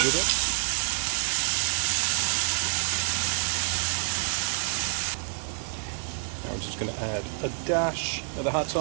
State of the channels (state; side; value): silent; left; digital silence